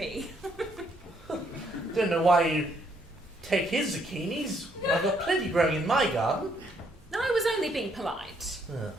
Don't know why you take his zucchinis. I've got plenty growing in my garden. No, I was only being polite.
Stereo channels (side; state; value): both; normal; correlation 0.70